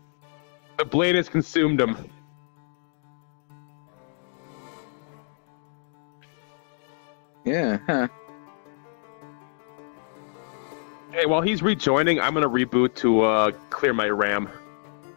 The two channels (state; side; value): silent; right; 60 dB below the other